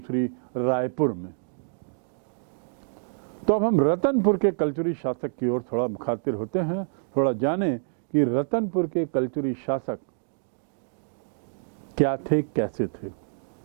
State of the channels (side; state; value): left; silent; digital silence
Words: रायपुर में। तो अब हम रतनपुर के कलचुरी शासक की ओर थोड़ा मुखातिर होते हैं, थोड़ा जानें कि रतनपुर के कलचुरी शासक क्या थे, कैसे थे।